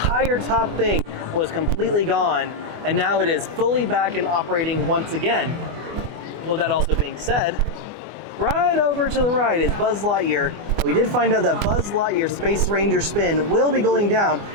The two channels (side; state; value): left; late; 24 ms